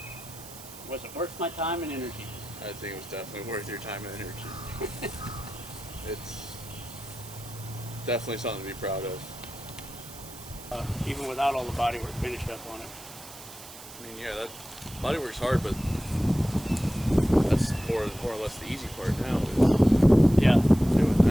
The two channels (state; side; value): noise; right; hiss, 16 dB below the sound